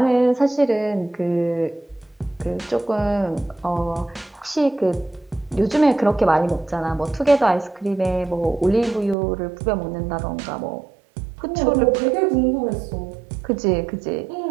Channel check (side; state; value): left; drops out; at 9.2 s